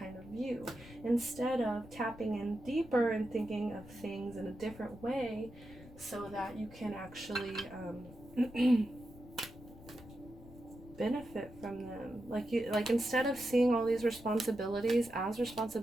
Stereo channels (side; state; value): left; noise; rumble, 18 dB below the sound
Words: of view, instead of tapping in deeper and thinking of things in a different way so that you can actually benefit from them. Like instead of seeing all these responsibilities as